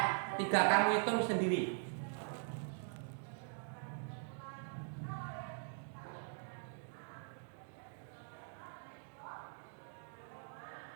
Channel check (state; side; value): silent; left; digital silence